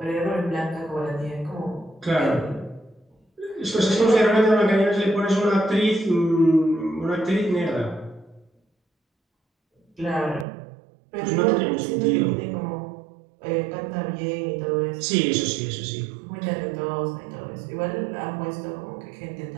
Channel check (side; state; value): left; drops out; at 10.5 s